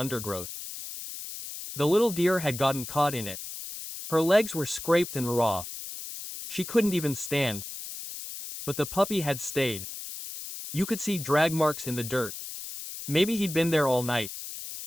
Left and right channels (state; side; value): noise; left; hiss, 9 dB below the sound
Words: The little deer had gotten caught in it. Her legs were scraped and raw. She couldn't even stand. But the puppy had stayed. You could see drag marks in the dirt. Maybe he'd been there all night.